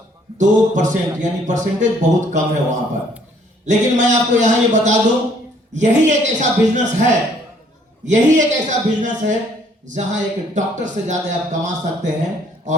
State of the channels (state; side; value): normal; both; correlation 0.63